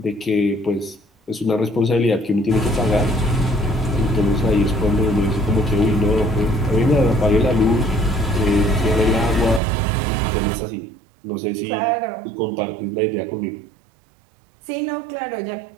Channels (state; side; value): drops out; left; at 9.6 s